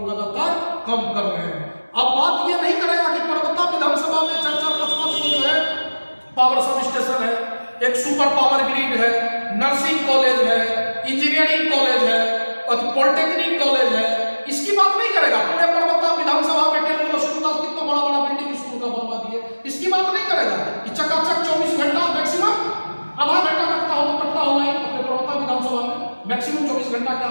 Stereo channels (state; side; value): inverted; both; correlation -1.00